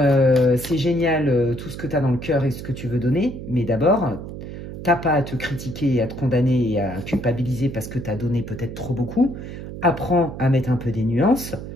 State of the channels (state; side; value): noise; right; hum, 10 dB below the sound